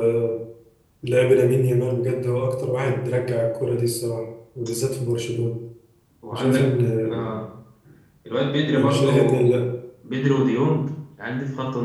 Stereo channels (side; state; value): both; identical; correlation 1.00